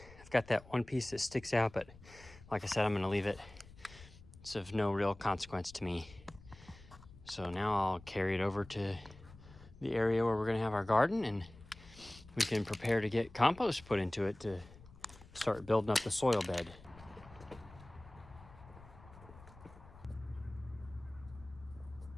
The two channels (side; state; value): left; noise; rumble, 20 dB below the sound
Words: I've got that one piece that sticks out, but like I said, I'm gonna leave it. It's of no real consequence to me. So now I'll carry it over to the area where we're gonna have our garden, and we can prepare to get compost put into it to start building up the soil bed.